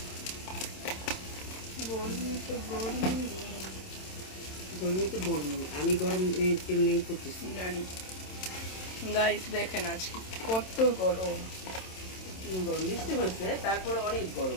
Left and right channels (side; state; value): right; late; 27 ms